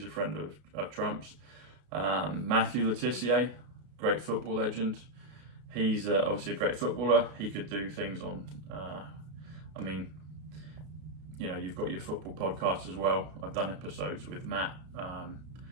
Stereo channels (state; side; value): late; left; 33 ms